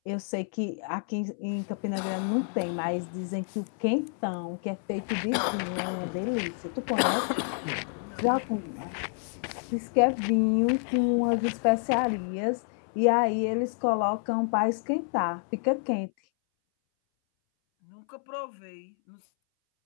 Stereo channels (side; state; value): right; silent; 59 dB below the other